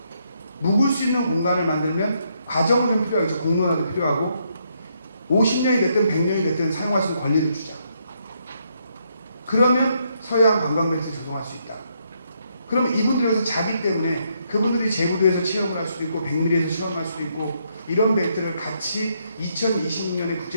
묵을 수 있는 공간을 만들면 과정은 좀 필요하겠죠. 공론화도 필요하고 50년이 됐든 100년이 됐든 사용할 수 있는 권리를 주자. 그러면 서해안 관광벨트를 조성할 수 있다. 그러면 이분들에서 자기 때문에 그분들이 제주도에서 체험을 할 수도 있고 백미리에서 체험할 수도 있고 이런 벨트를 같이 2026년에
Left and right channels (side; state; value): both; inverted; correlation -0.75